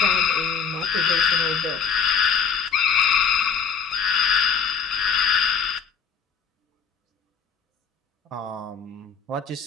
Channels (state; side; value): quieter; right; 6.4 dB